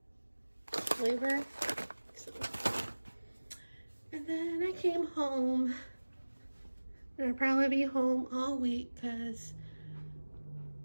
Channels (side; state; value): both; inverted; correlation -1.00